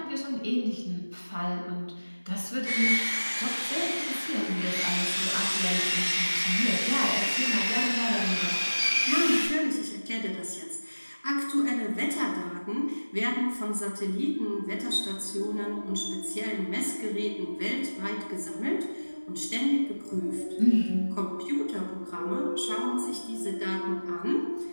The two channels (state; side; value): inverted; both; correlation -1.00